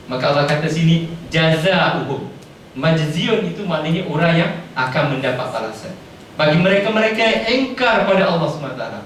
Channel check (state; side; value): identical; both; correlation 1.00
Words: Maka Allah kata sini jazaohum. Majziun itu maknanya orang yang akan mendapat balasan. Bagi mereka-mereka yang engkar pada Allah SWT,